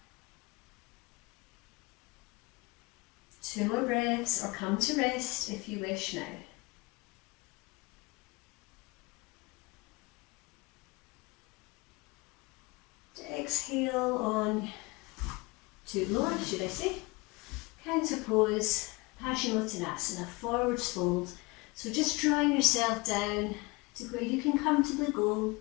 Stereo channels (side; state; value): right; quieter; 24.8 dB